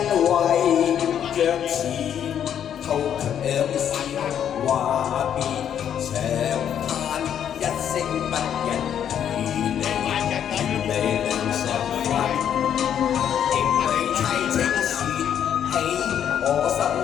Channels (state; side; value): quieter; right; 9.3 dB